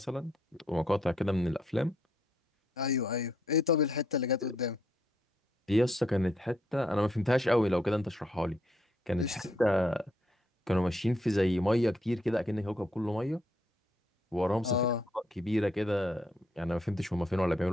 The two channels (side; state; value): both; normal; correlation 0.73